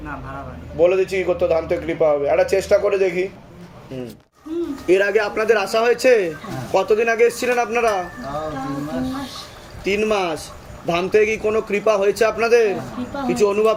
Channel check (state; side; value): identical; both; correlation 1.00